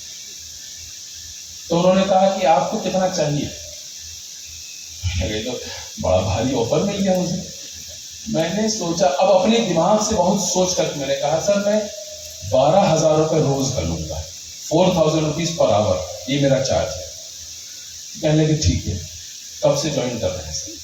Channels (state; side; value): identical; both; correlation 1.00